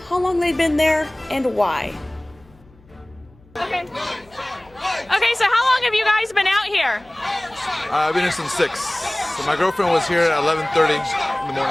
long they'd been there and why. Okay, so how long have you guys been out here? I've been here since 6. So my girlfriend was here at 11:30 in the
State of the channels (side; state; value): left; noise; hum, 28 dB below the sound